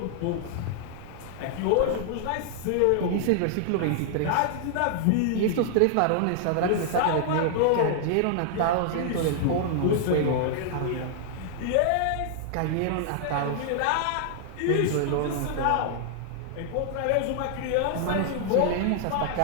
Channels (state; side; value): different; both; correlation -0.01